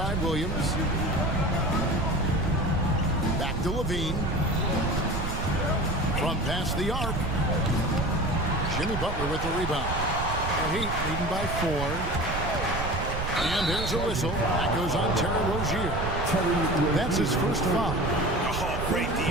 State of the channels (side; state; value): right; noise; rumble, 4 dB below the sound